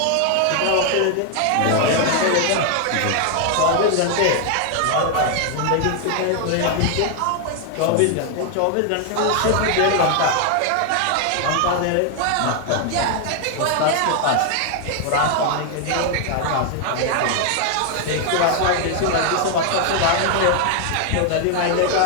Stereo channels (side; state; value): both; different; correlation 0.00